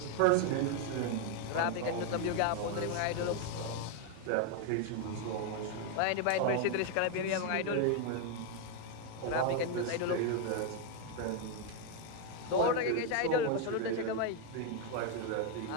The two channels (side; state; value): both; different; correlation 0.01